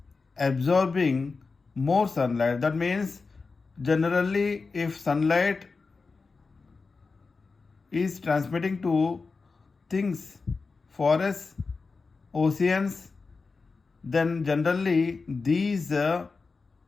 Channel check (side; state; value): right; quieter; 4.3 dB